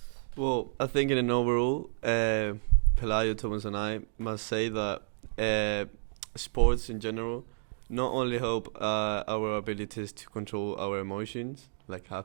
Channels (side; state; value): left; silent; digital silence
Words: Well, I think in an overall, Pelayo, Thomas and I must say that sports in general not only help our abilities to control our emotions, like